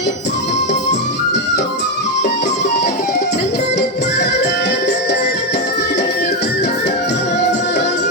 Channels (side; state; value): both; normal; correlation 0.07